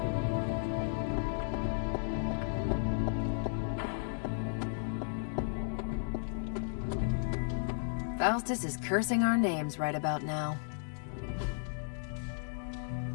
Faustus is cursing our names right about now.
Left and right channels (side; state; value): right; silent; digital silence